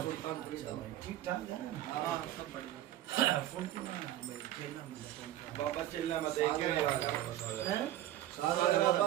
ठीक ठाक है सब बढ़िया फोन तो भाई खेलना मतलब बाबा चिल्ला मत देख के हैं सारा बाबा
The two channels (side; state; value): left; quieter; 13.4 dB